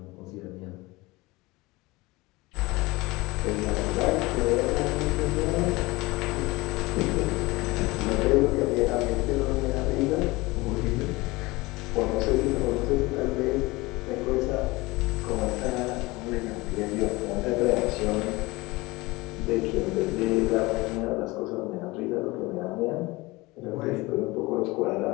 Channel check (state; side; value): quieter; right; 22.0 dB